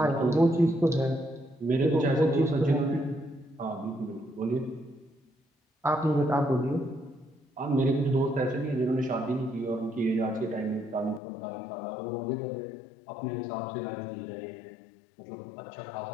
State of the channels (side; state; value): right; drops out; at 11.2 s